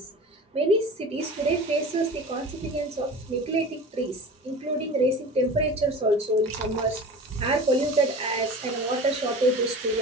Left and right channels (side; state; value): both; normal; correlation 0.36